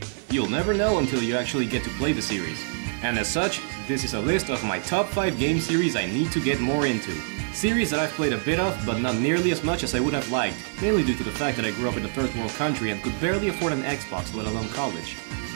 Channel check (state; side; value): silent; left; digital silence